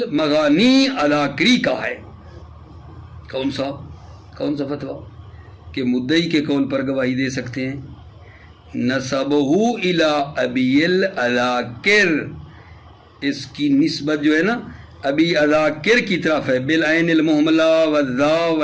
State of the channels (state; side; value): identical; both; correlation 1.00